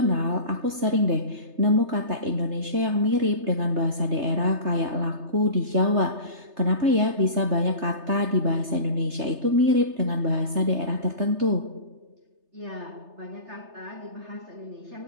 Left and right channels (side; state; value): left; late; 3.3 ms